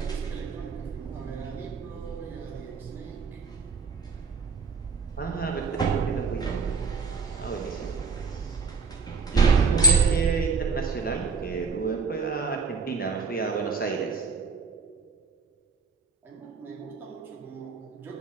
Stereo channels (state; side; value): quieter; left; 4.8 dB